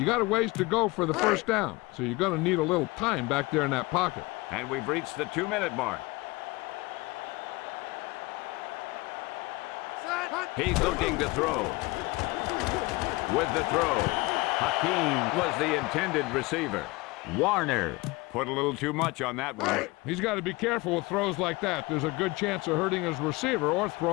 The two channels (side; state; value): right; quieter; 23.0 dB